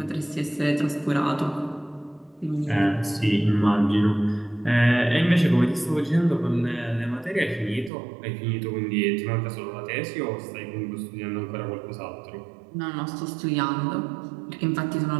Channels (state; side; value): drops out; left; at 7.9 s